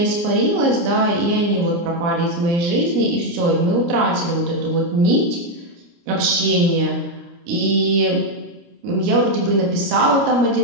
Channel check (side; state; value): left; late; 29 ms